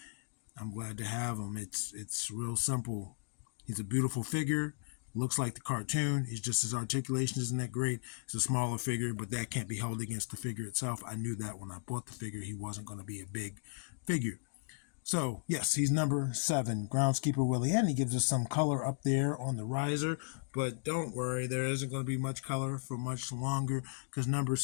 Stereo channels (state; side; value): silent; right; digital silence